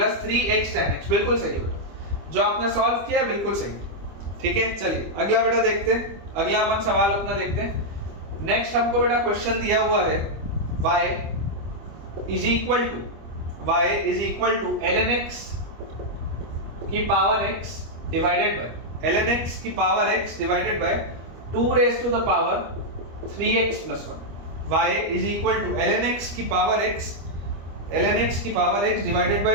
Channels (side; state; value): left; late; 25 ms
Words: बिल्कुल सही है बेटा, जो आपने सॉल्व किया है बिल्कुल सही। ठीक है, चलिए अगला बेटा देखते हैं, अगला अपन सवाल अपना देखते हैं। नेक्स्ट हमको बेटा क्वेश्चन दिया हुआ है y is equal to ln x की power x divided by ln x की power x divided by 2 raise to the power 3x plus 1। y is equal to ln x की power x divided